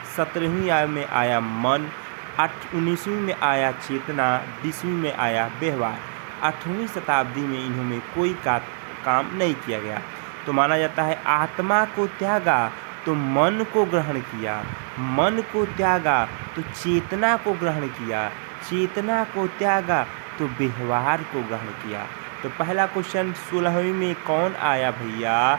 17वीं में आया मन, 19वीं में आया चेतना, 20वीं में आया व्यवहार। 8वीं शताब्दी में इन्होंने कोई काम नहीं किया गया। तो माना जाता है आत्मा को त्यागा तो मन को ग्रहण किया, मन को त्यागा तो चेतना को ग्रहण किया, चेतना को त्यागा तो व्यवहार को ग्रहण किया। तो पहला क्वेश्चन 16वीं में कौन आया भैया,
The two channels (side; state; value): left; silent; 63 dB below the other